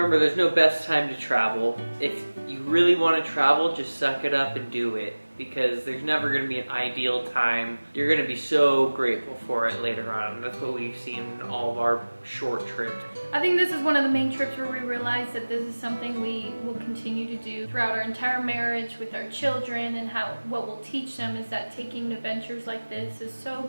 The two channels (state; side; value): inverted; both; correlation -1.00